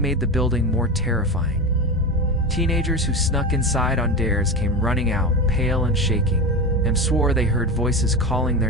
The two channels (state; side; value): normal; both; correlation 0.23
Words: the building more terrifying. Teenagers who snuck inside on dares came running out, pale and shaking, and swore they heard voices calling their